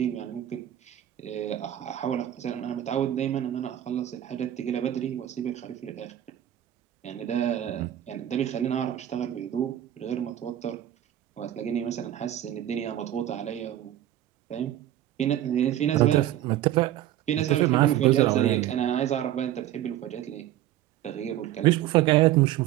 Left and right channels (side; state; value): left; quieter; 12.5 dB